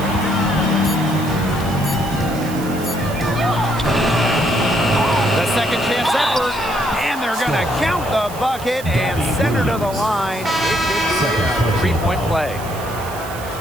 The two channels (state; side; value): noise; right; hiss, 15 dB below the sound